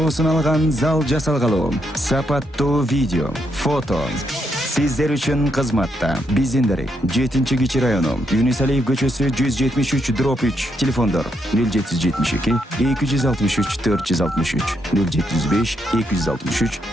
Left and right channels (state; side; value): normal; both; correlation 0.78